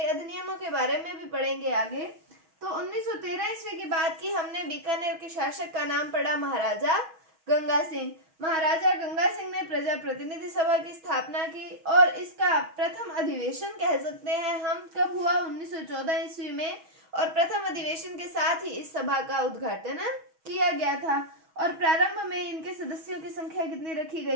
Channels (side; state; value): left; late; 6.3 ms